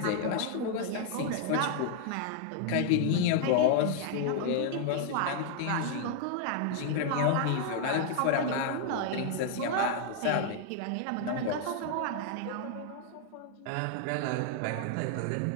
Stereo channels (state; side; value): different; both; correlation 0.00